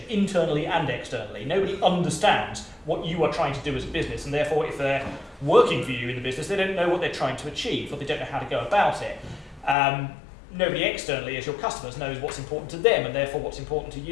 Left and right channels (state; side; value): drops out; right; at 9.8 s